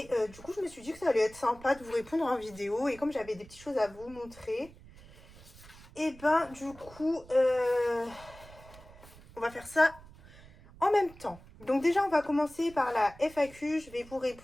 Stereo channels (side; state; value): right; noise; rumble, 21 dB below the sound